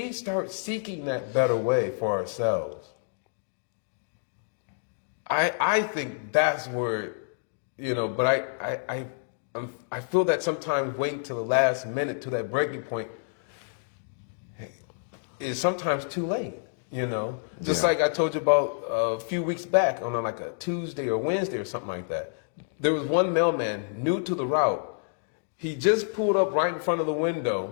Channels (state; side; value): silent; right; digital silence